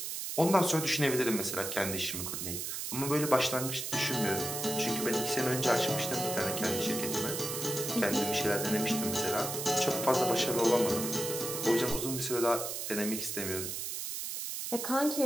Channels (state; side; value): noise; right; hiss, 4 dB below the sound